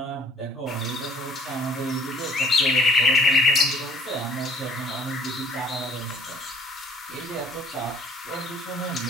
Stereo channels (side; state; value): both; normal; correlation 0.59